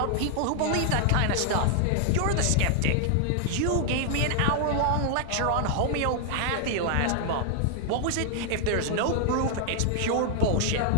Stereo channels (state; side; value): different; both; correlation 0.00